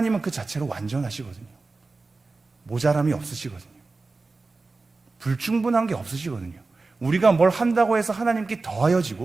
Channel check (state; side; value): quieter; left; 3.7 dB